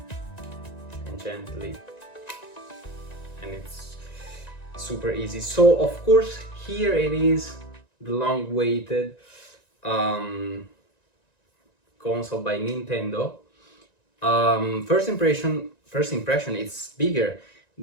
and gently, and it's super easy. So of course, here it is, the long-awaited console by Nintendo. First impression, it's bigger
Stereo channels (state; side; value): late; right; 1.9 ms